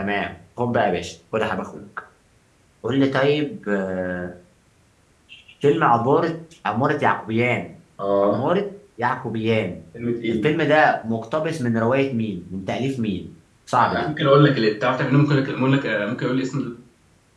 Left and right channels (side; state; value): both; identical; correlation 1.00